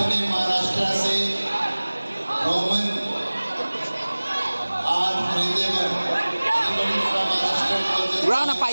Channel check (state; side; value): inverted; both; correlation -1.00